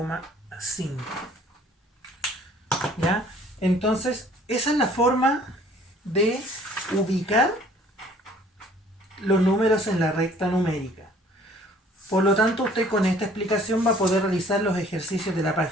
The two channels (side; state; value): both; normal; correlation 0.55